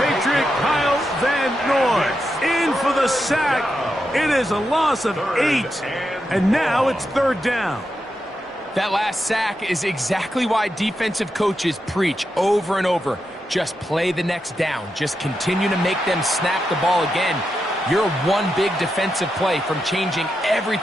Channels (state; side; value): normal; both; correlation 0.86